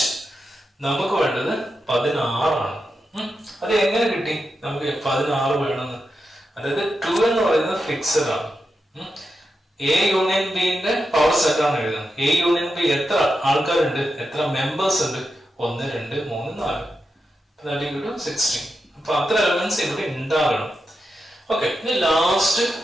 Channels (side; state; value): both; normal; correlation 0.88